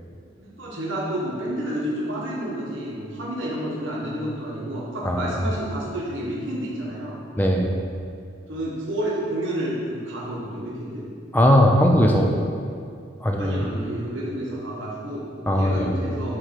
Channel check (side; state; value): both; normal; correlation 0.72